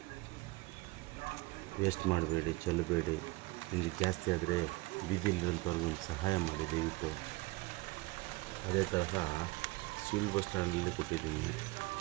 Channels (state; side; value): quieter; left; 23.2 dB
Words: ವೇಸ್ಟ್ ಮಾಡಬೇಡಿ, ಚೆಲ್ಲಬೇಡಿ. ನಿಮಗೆ ಜಾಸ್ತಿ ಆದರೆ ಬೀದಿಯಲ್ಲಿರೋಂಥವ್ರಿಗೆ ಒಂದು ಸಹಾಯ ಮಾಡಿ ದಯವಿಟ್ಟು. ಅದೇ ತರಹ ಸಿವಿಲ್ ಬಸ್ ಸ್ಟ್ಯಾಂಡಲ್ಲಿ ಕೊಟ್ಟಿದ್ದೀನಿ.